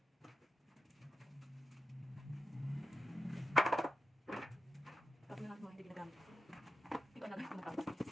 Tapos na natin mga hindi ginagamit. Ikaw na lang kung matapos.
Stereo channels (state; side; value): normal; both; correlation 0.89